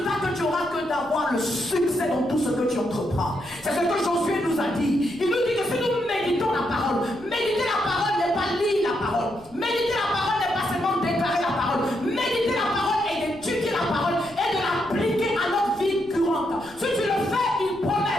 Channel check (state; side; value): noise; left; rumble, 24 dB below the sound